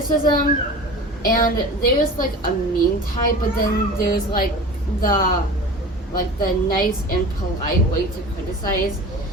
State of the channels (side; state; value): both; normal; correlation 0.37